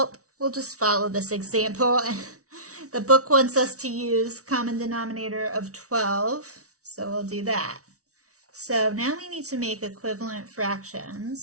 we'll just follow this example. The book wants us to use common denominator of 12, so we'll do that. So now we need to make equivalent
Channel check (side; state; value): left; late; 0.65 ms